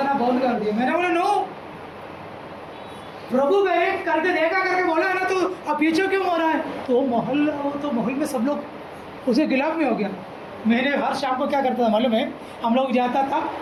बंद कर दिया। मैंने बोला नो, प्रभु गए करके देखा करके बोला है ना, तो अब पीछे क्यों हो रहा है? तो महल में सब लोग उसे गिलाफ में हो गया। मैंने हर शाम को क्या करता था मालूम है? हम लोग जाता था,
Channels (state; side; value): identical; both; correlation 1.00